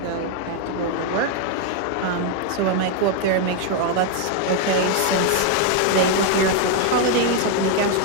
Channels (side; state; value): both; different; correlation 0.01